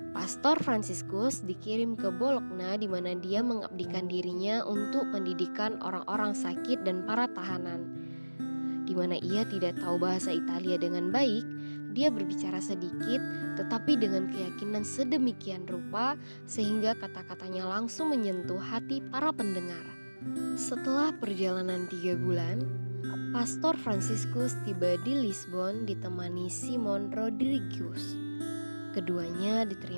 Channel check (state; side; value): inverted; both; correlation -1.00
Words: Pastor Fransiskus dikirim ke Bologna di mana dia mengabdikan dirinya untuk pendidikan orang-orang sakit dan para tahanan. Di di mana ia tidak tahu bahasa Italia dengan baik, dia berbicara sedikit tetapi dengan keyakinan sedemikian rupa sehingga kata-katanya langsung menyentuh hati para pendengar. Setelah perjalanan 3 bulan, Pastor Franciscus tiba di Lisbon ditemani Simon Rodrigues. Keduanya